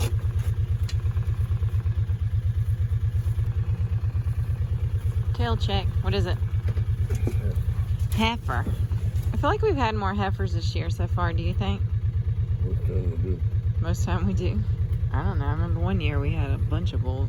Tail check. What is it? Heifer. I feel like we've had more heifers this year so far, do you think? Most time we do. Most time we do. I don't know. I remember one year we had a bunch of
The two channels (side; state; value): both; identical; correlation 1.00